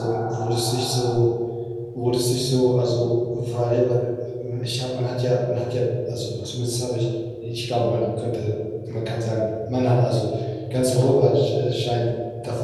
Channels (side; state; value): both; identical; correlation 1.00